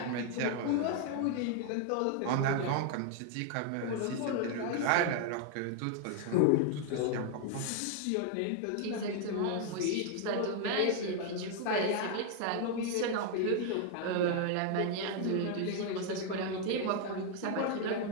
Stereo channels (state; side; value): different; both; correlation 0.00